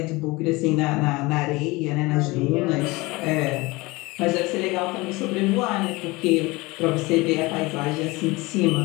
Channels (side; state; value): right; quieter; 22.9 dB